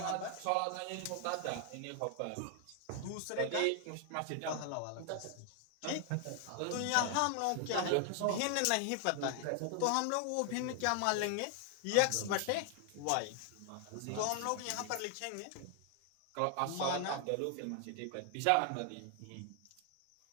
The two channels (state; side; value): different; both; correlation 0.00